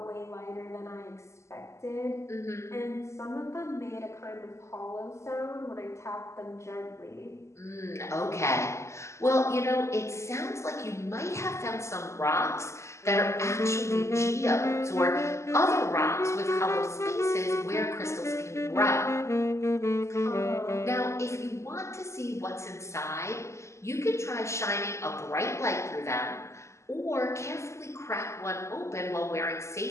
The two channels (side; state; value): right; late; 0.13 ms